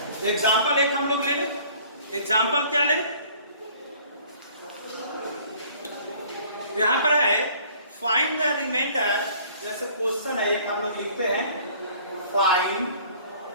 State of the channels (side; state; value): both; inverted; correlation -0.54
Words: एग्जांपल एक हम लोग ले लें। एग्जांपल क्या ले? यहां पर है फाइंड द रिमाइंडर, जैसे क्वेश्चन है एक हम लोग लिखते हैं, find